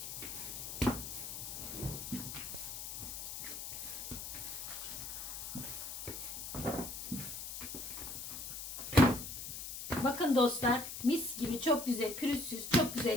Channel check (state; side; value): noise; left; hiss, 7 dB below the sound